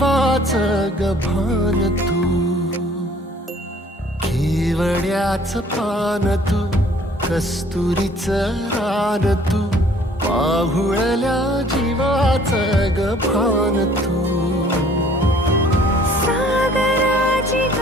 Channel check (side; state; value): both; normal; correlation 0.56